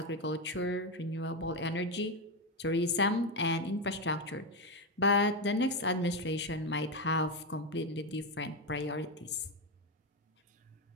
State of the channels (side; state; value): both; normal; correlation 0.10